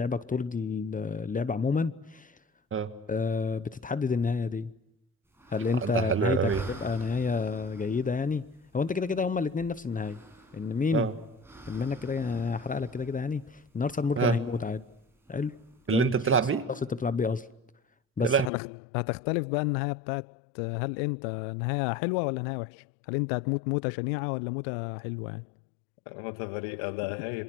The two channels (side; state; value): right; drops out; at 18.5 s